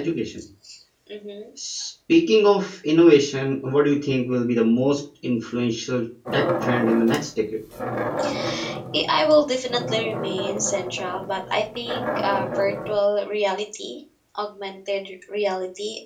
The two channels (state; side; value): identical; both; correlation 1.00